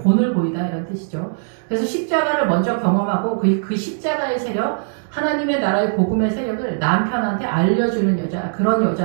보이다 이런 뜻이죠. 그래서 십자가를 먼저 경험하고 그 십자가의 세력, 하나님의 나라의 복음의 세력을 남편한테 알려주는 여자, 그런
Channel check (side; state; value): left; silent; 65 dB below the other